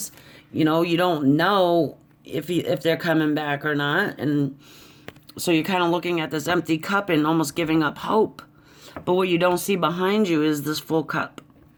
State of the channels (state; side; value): identical; both; correlation 1.00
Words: You don't know if they're coming back or not. And so you're kind of looking at this empty cup and almost giving up hope. But what you don't see behind you is this full cup.